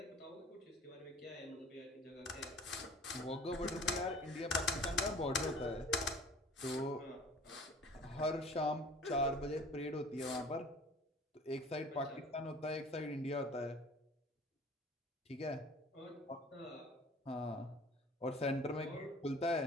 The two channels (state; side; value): normal; both; correlation 0.46